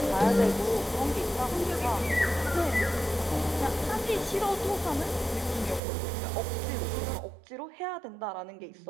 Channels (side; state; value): left; drops out; at 5.8 s